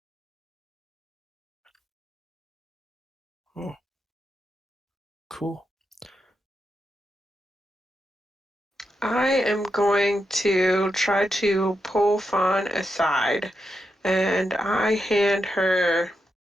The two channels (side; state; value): both; normal; correlation 0.85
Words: Oh, cool. I am going to try to pull Fawn aside, and I hand her